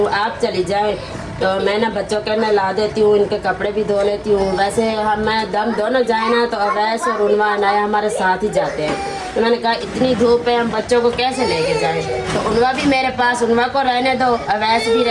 आप चली जाएं, तो मैं ना बच्चों के नहला देती हूँ, इनके कपड़े भी धो लेती हूँ। वैसे हम मैं दम दोनों जाए ना तो अवैस और उनवा अनाया हमारे साथ ही जाते हैं। तो मैंने कहा इतनी धूप है हम बच्चों को कैसे लेके जाएं, तो उनवा भी मेरे पास, उनवा को रहने दो, अवैस भी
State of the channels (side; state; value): both; identical; correlation 1.00